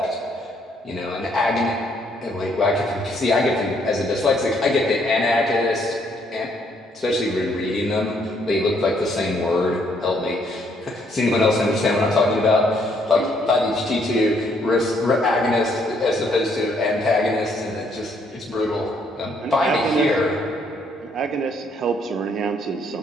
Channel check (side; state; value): both; normal; correlation 0.69